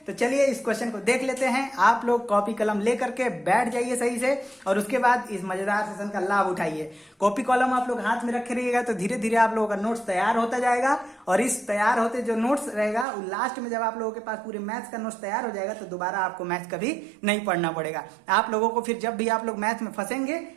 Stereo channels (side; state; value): left; drops out; at 13.1 s